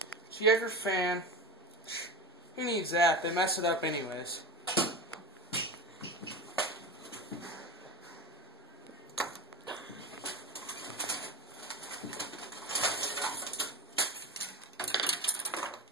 So you have your fan. Who needs that? They mess it up anyways.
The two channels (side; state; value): both; normal; correlation 0.26